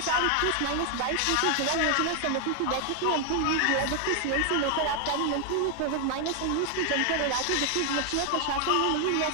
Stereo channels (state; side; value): different; both; correlation 0.00